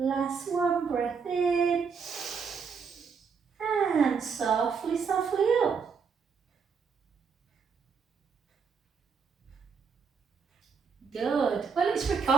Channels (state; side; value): quieter; left; 5.9 dB